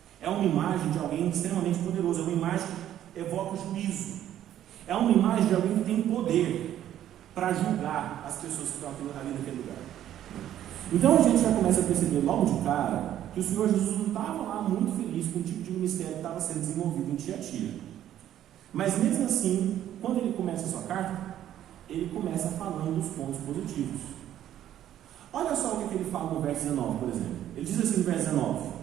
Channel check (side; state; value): left; quieter; 11.6 dB